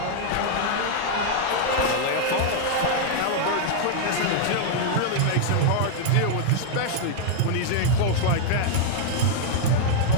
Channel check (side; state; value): both; different; correlation -0.01